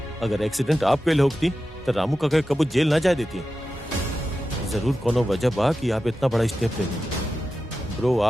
अगर एक्सीडेंट आप कैले होती तो रामू का कबू जेल ना जाए देती। जरूर कोनो वजह बा कि आप इतना बड़ा स्टेप ले ली। ब्रो,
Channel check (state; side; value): normal; both; correlation 0.92